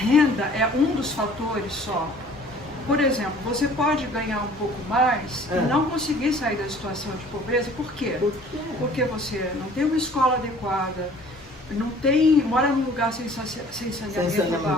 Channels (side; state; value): both; normal; correlation 0.52